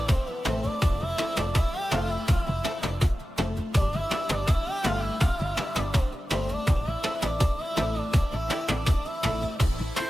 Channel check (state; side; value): normal; both; correlation 0.94